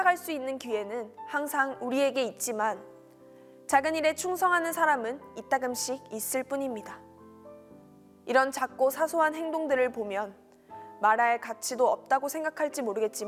수 있는 기회는 항상 우리에게 있지만 작은 일에 충성하는 사람은 이따금씩 있을 뿐입니다. 이런 작고 사소한 행동들을 보면 말할 가치도 없다고 생각할지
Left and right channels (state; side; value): identical; both; correlation 1.00